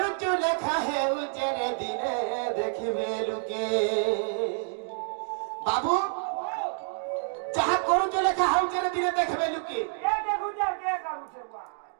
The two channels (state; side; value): silent; left; digital silence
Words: लिखा है उचेरे दिने देखिबे लुके बाबू जहाँ करुचु लिखा है उचेरे दिने देखिबे लुके